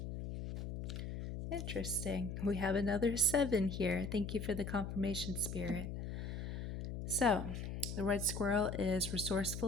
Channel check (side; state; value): left; noise; hum, 5 dB below the sound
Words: Interesting. We have another 7 here. Thank you for the confirmation, Spirit. So, the red squirrel is